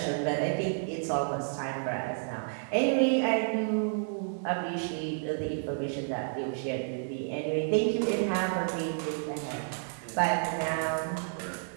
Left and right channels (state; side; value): silent; left; digital silence